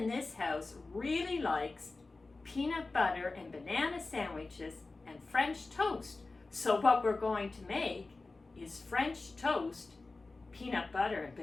this house really likes peanut butter and banana sandwiches and French toast. So what we're going to make is French toast, peanut butter and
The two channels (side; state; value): right; quieter; 3.5 dB